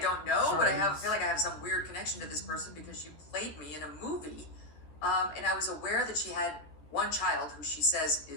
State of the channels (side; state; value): right; late; 13 ms